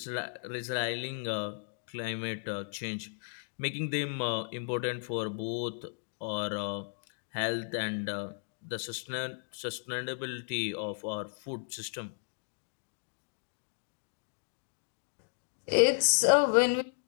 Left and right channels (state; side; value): silent; right; digital silence